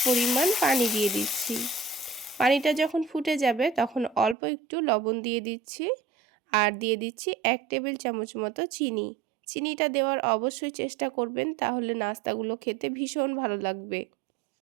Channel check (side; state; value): left; drops out; at 4.4 s